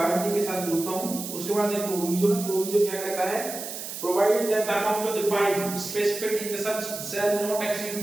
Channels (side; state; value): right; noise; hiss, 8 dB below the sound